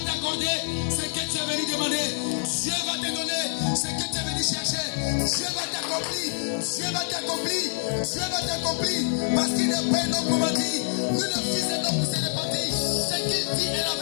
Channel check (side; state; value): right; silent; digital silence